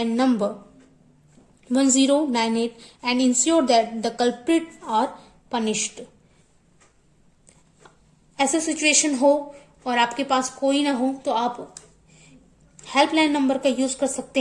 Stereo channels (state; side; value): identical; both; correlation 1.00